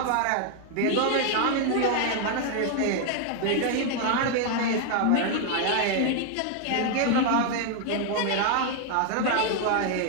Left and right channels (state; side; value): different; both; correlation 0.00